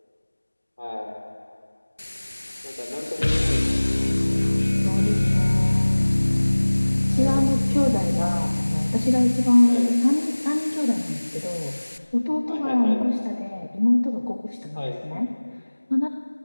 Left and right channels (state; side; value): inverted; both; correlation -1.00